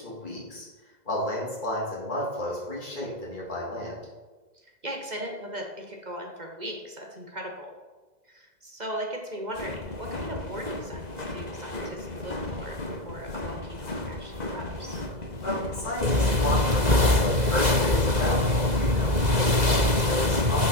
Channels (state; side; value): late; left; 2.0 ms